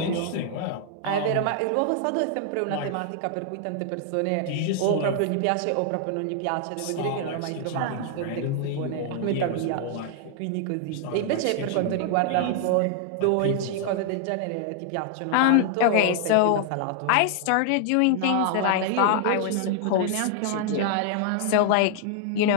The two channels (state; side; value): different; both; correlation 0.00